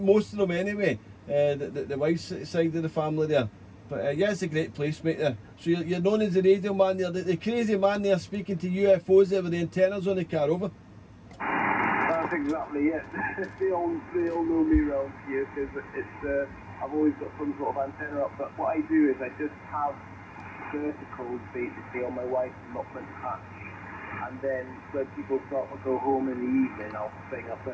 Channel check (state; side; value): identical; both; correlation 1.00